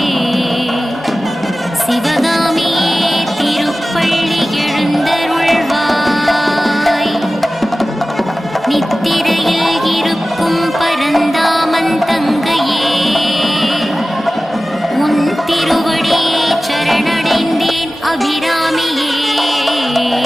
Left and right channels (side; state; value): both; normal; correlation 0.96